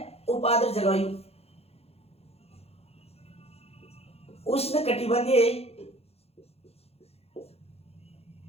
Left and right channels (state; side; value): late; right; 0.29 ms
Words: उपाद्र जलवायु, उष्ण